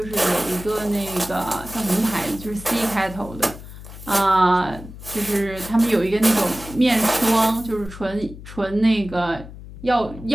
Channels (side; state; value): left; noise; hum, 15 dB below the sound